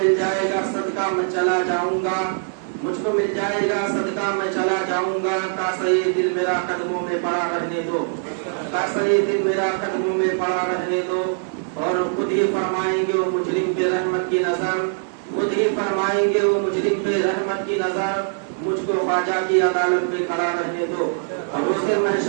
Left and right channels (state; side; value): silent; left; 62 dB below the other